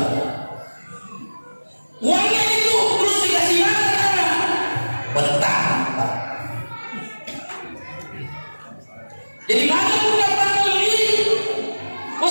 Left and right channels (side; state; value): both; inverted; correlation -1.00